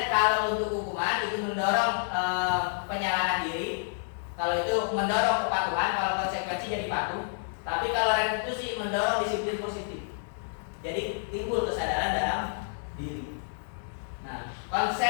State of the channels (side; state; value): right; silent; digital silence